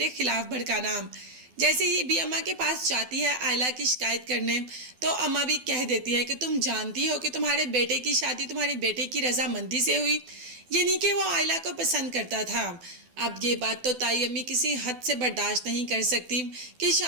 खिलाफ भड़काना। जैसे ही भी अम्मा के पास जाती है आयला की शिकायत करने, तो अम्मा भी कह देती है कि तुम जानती हो कि तुम्हारे बेटे की शादी तुम्हारे बेटे की रजामंदी से हुई, यानी कि वो आयला को पसंद करता था। अब ये बात तो ताई अम्मी किसी हद से बर्दाश्त नहीं कर सकती कि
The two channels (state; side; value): late; left; 12 ms